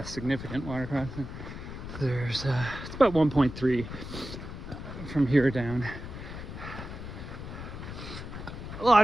significant water crossing. There's it's about 1.3 from here down. A lot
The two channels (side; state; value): left; noise; rumble, 9 dB below the sound